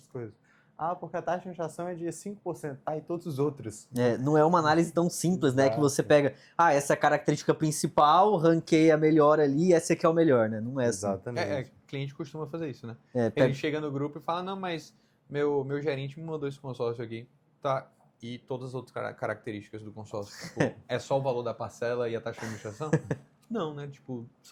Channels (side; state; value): both; identical; correlation 1.00